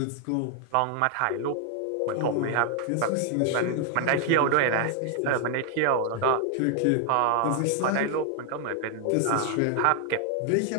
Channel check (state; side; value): different; both; correlation 0.00